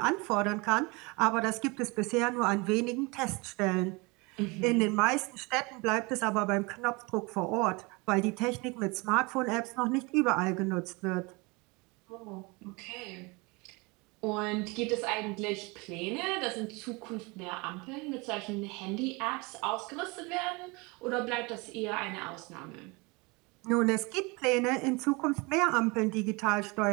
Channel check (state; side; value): quieter; left; 27.0 dB